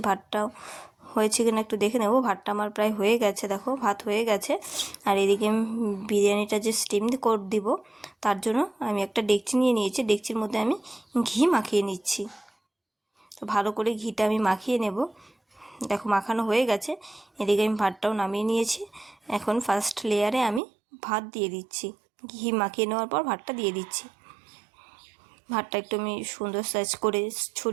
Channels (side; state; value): left; drops out; at 20.6 s